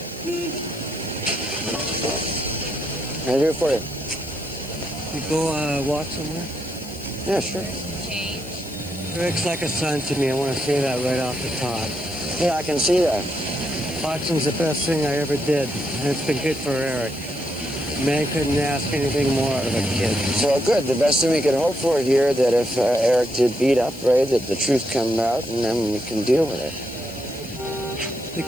What can I do for you? You go walk somewhere? Yeah, sure. Eric's like a son to me. I want to say that right off the top. Yeah, I can see that. Boxing's the best thing I ever did, and it's been good for Eric. Man couldn't ask anything more out of a kid. So good. The best thing we could hope for here that if Eric did beat up Ray, that the truth comes out and then we can deal with it. The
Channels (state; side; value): noise; left; hiss, 19 dB below the sound